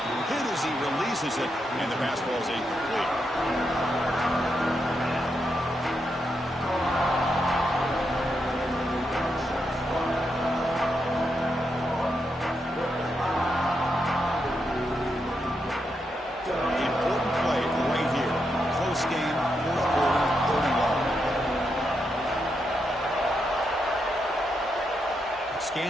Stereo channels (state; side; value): normal; both; correlation 0.83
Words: Hit as he releases it, and the pass ball is incomplete.